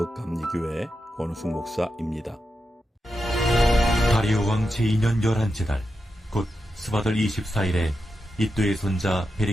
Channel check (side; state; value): both; normal; correlation 0.88